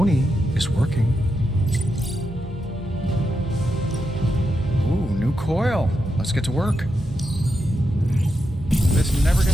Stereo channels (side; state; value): both; normal; correlation 0.85